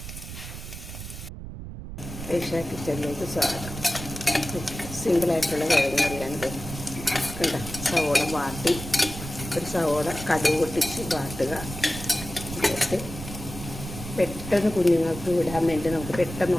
ഏഷ്യ കിച്ചണിലേക്ക് സ്വാഗതം. സിമ്പിളായിട്ടുള്ള കിഴങ്ങ് കറിയാണിത്. കണ്ട സവോള വാട്ടി, ഒരു സവോള കടുക് പൊട്ടിച്ച് വാട്ടുക. എന്നിട്ട് പെട്ടെന്ന് കുഞ്ഞുങ്ങൾക്ക് വിടാൻ വേണ്ടി നമുക്ക് പെട്ടെന്ന്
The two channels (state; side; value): noise; right; rumble, 10 dB below the sound